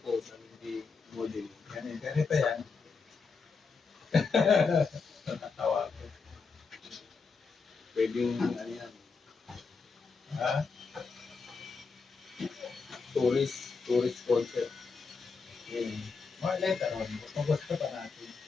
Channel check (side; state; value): right; quieter; 4.8 dB